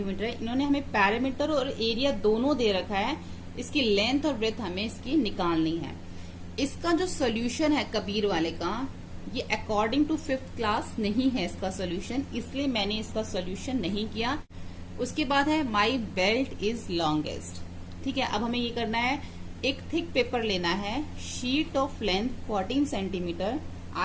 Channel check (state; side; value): identical; both; correlation 1.00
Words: है। इन्होंने हमें पैरामीटर और एरिया दोनों दे रखा है, इसकी लेंथ और विड्थ हमें इसकी निकालनी है। इसका जो सोल्यूशन है कबीर वाले का, ये अकॉर्डिंग टू 5th क्लास नहीं है इसका सोल्यूशन, इसलिए मैंने इसका सोल्यूशन नहीं किया। उसके बाद है माई बेल्ट इज लॉन्गेस्ट। ठीक है, अब हमें ये करना है, एक थिक पेपर लेना है, शीट ऑफ लेंथ 14 सेंटीमीटर।